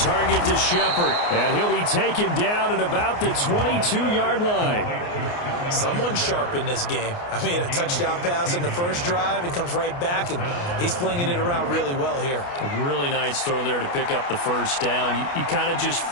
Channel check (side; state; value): right; late; 29 ms